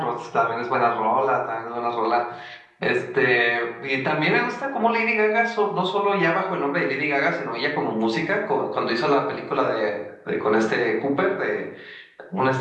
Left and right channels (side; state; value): both; identical; correlation 1.00